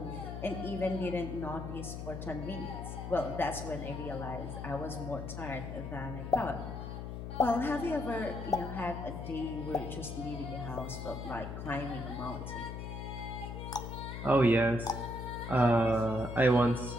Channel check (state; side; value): noise; left; hum, 7 dB below the sound